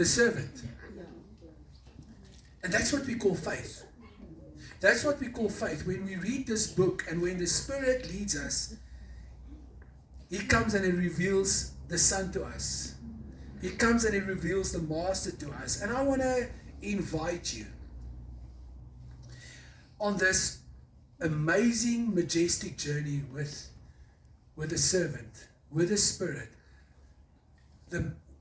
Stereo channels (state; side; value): identical; both; correlation 1.00